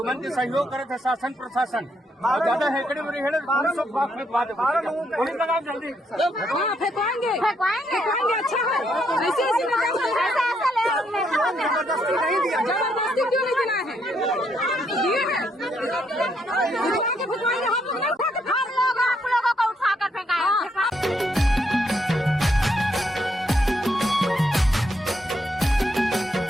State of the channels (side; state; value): both; normal; correlation 0.75